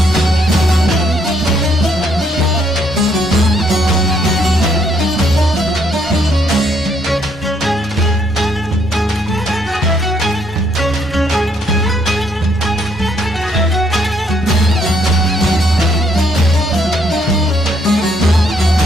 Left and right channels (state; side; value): normal; both; correlation 0.70